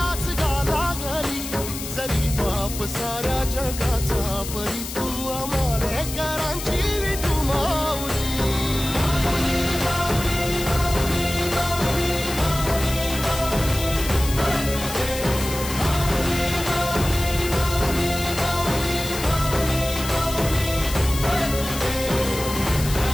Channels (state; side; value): noise; left; hiss, 8 dB below the sound